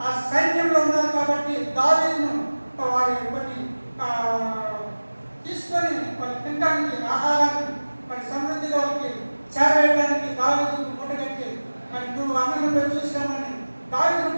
ఆ సైన్యంలో ఉన్నారు. కాబట్టి దావీదును వారి కొన్ని తీసుకొని వాళ్ళు తినడానికి ఆహారాన్ని మరి సమృద్ధిగా వాళ్ళకి చేరవేయడానికి దావీదుకు మూటగట్టి మరి నువ్వు అన్నలో చూసామని దావీదును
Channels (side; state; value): both; inverted; correlation -1.00